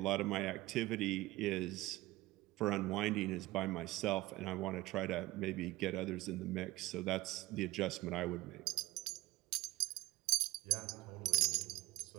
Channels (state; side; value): quieter; left; 18.7 dB